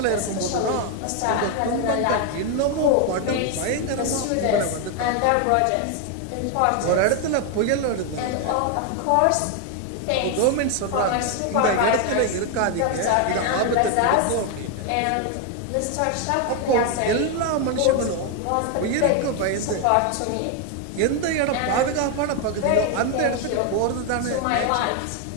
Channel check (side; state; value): both; different; correlation 0.01